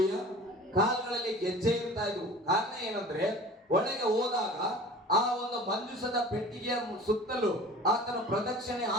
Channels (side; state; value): both; normal; correlation 0.42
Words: ಕಾಲುಗಳಲ್ಲಿ ಗೆಜ್ಜೆ ಇರ್ತಾ ಇದ್ವು. ಕಾರಣ ಏನಂದ್ರೆ, ಒಳಗೆ ಹೋದಾಗ ಆ ಒಂದು ಮಂಜೂಷದ ಪೆಟ್ಟಿಗೆಯ ಸುತ್ತಲೂ ಆತನ ಪ್ರದಕ್ಷಿಣೆ